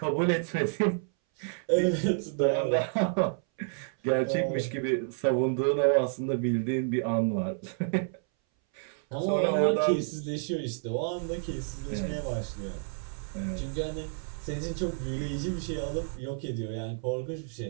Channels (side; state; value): left; silent; 58 dB below the other